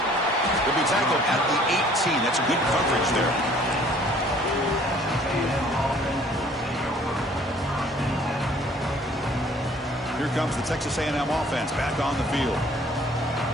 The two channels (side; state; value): both; normal; correlation 0.56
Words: Will be tackled at the 18. That's good coverage there. Here comes the Texas A&M offense back on the field.